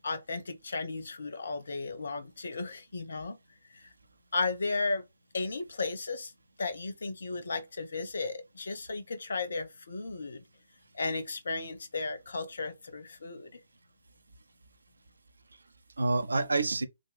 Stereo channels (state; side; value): inverted; both; correlation -0.86